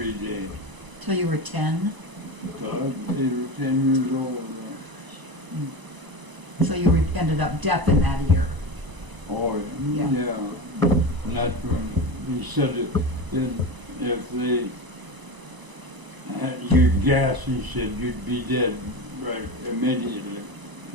day. Till you were 10? So I was 8 or 10 years old. So you ended up deaf in that ear. Oh, Yeah. yeah. And that's when he said if they had you'd gas, he said you'd be dead right immediately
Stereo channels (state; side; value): late; left; 1.0 ms